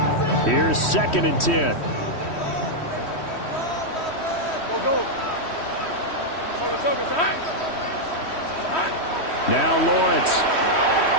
Here's 2nd and 10. Now Lawrence.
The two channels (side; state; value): right; late; 3.1 ms